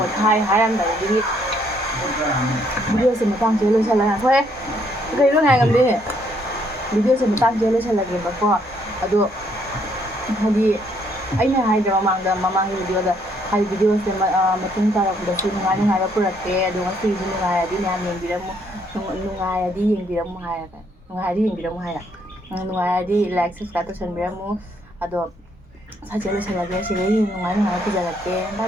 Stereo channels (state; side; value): normal; both; correlation 0.69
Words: hai anh đấy đi video sẽ mà tăng chế sẽ là thôi cái lúc này làm gì video sẽ mà tăng chế sẽ là gì mà có aduh hadi aina haidra mamang video da hai video se matung tara da su ngai ngai ra purate adu ngasi ngai adi nyam yeng biramu ngai adi yeng biramu hai ka ngai adi yeng biramu hai ngai adi like subscribe to biramu ado sa chelo se lagi se ngai ngai ku jalake bye